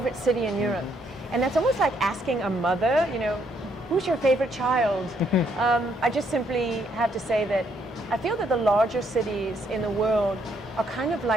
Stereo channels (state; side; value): normal; both; correlation 0.71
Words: city in Europe? And that's almost like asking a mother, you know, who's your favorite child? I just simply have to say that I feel that the larger cities in the world are kind of